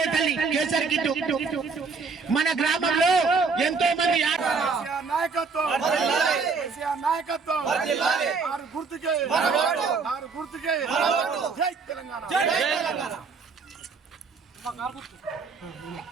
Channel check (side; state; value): left; quieter; 4.8 dB